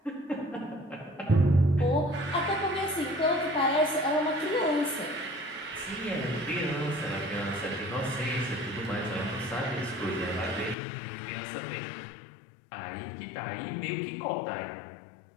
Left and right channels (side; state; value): right; drops out; at 10.8 s